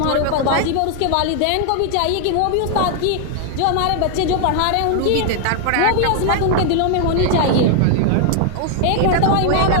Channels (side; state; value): both; different; correlation 0.00